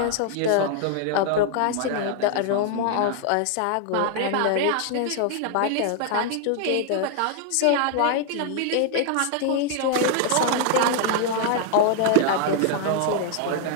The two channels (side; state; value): both; different; correlation 0.00